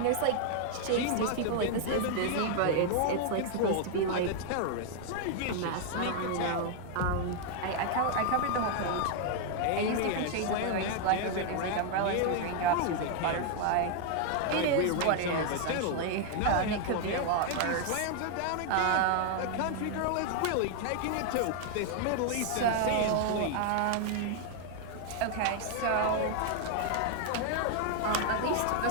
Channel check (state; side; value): different; both; correlation 0.00